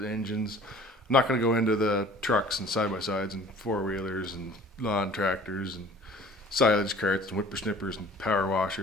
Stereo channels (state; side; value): normal; both; correlation 0.49